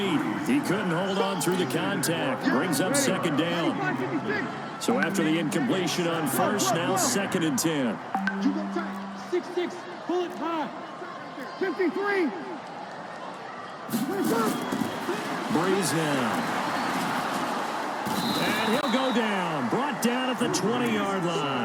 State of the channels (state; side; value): identical; both; correlation 1.00